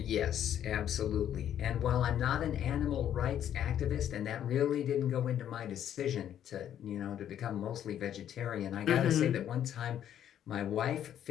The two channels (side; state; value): right; quieter; 10.4 dB